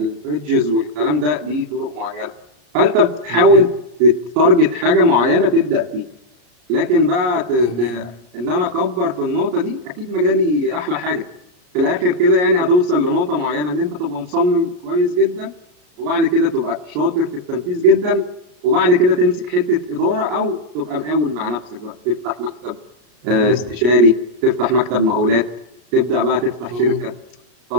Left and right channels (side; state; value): left; late; 34 ms